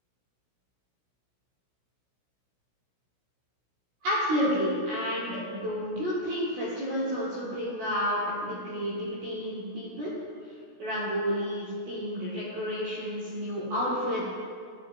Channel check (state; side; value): late; left; 16 ms